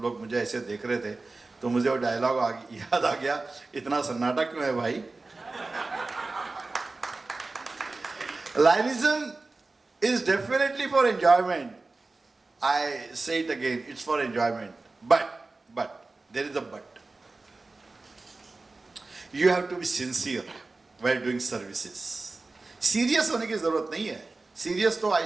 लोग मुझे ऐसे देख रहे थे, तो मुझे वो डायलॉग याद आ गया. इतना सन्नाटा क्यों है भाई? Lionism is definitely for enjoyment. I say it again, it's for enjoyment. But, there is a but. You have to be sincere while doing services. Serious होने की जरूरत नहीं है. Serious तो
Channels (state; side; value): quieter; left; 3.5 dB